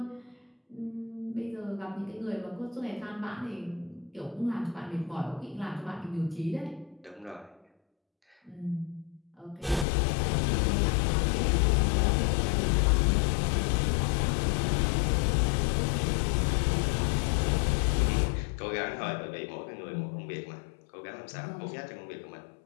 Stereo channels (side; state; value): right; drops out; at 9.9 s